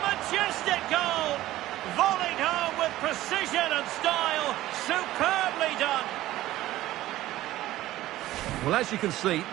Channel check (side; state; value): left; quieter; 15.4 dB